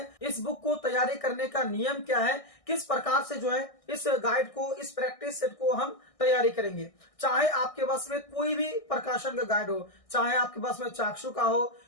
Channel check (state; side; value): late; right; 1.6 ms